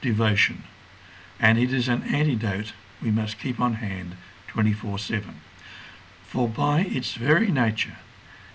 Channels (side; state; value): both; identical; correlation 1.00